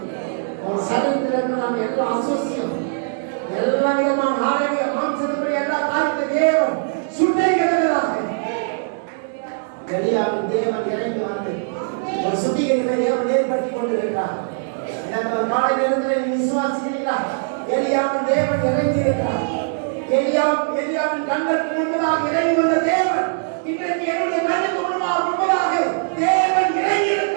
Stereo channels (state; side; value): silent; left; digital silence